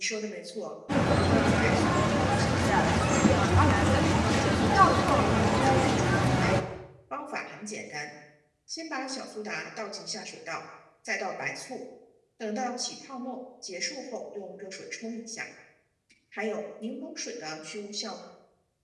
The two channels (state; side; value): identical; both; correlation 1.00